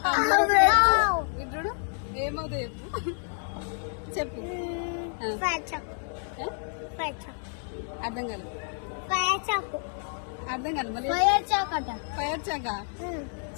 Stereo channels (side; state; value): right; silent; 59 dB below the other